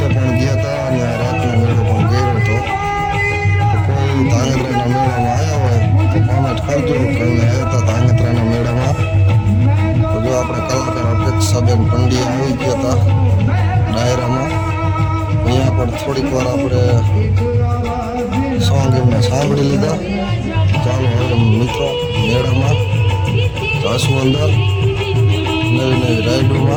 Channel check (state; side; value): identical; both; correlation 1.00